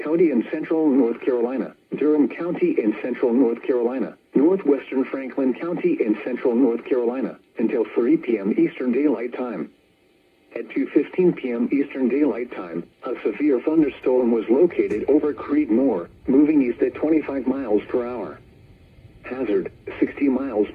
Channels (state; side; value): identical; both; correlation 1.00